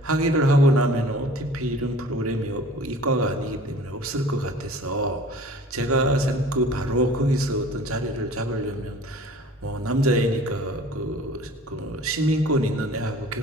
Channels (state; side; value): normal; both; correlation 0.46